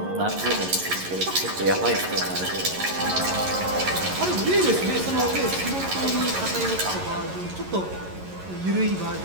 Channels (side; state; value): left; late; 11 ms